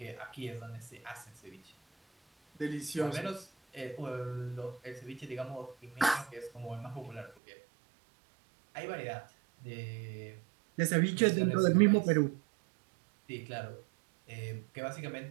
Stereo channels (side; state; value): left; drops out; at 7.4 s